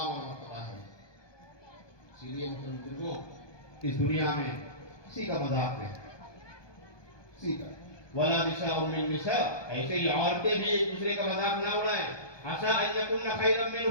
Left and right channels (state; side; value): late; right; 1.2 ms